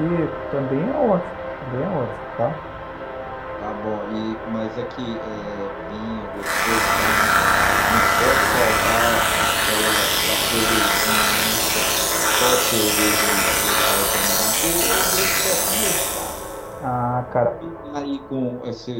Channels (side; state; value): both; identical; correlation 1.00